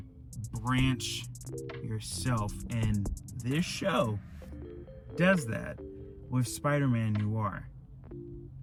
branch yourself. And this show does that with Spider-Man Noir.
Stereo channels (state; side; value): identical; both; correlation 1.00